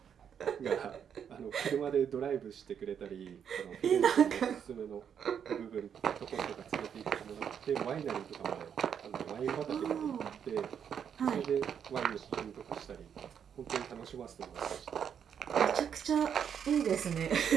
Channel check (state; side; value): quieter; left; 8.0 dB